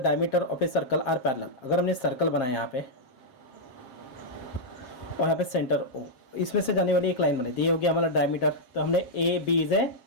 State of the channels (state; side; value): late; right; 7.5 ms